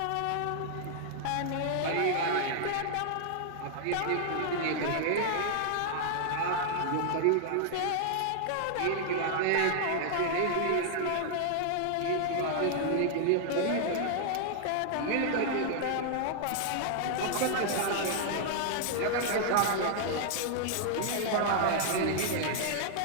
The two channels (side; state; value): both; different; correlation -0.01